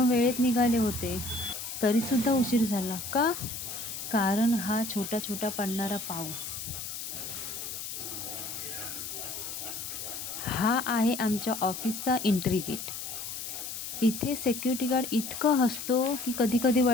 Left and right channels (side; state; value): left; noise; hiss, 7 dB below the sound